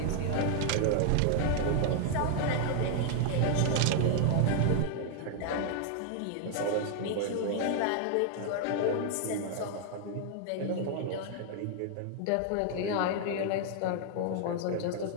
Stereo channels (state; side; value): different; both; correlation 0.00